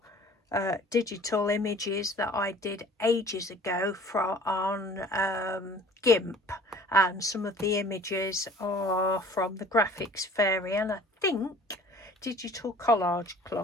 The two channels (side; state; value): both; normal; correlation 0.48